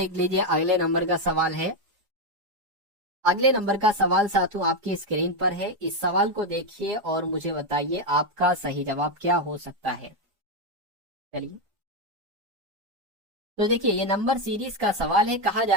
लीजिए अगले नंबर का सवाल है। अगले नंबर का सवाल साथियों आपकी स्क्रीन पर है। इस सवाल को देखिए और मुझे बताइए आपका सही जवाब क्या हो सकता है। चलिए तो देखिए ये नंबर सीरीज का सवाल है। कहा जा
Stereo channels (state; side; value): late; left; 4.9 ms